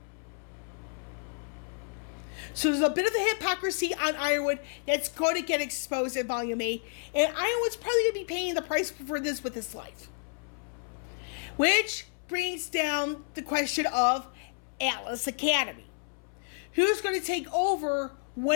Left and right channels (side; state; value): right; silent; 58 dB below the other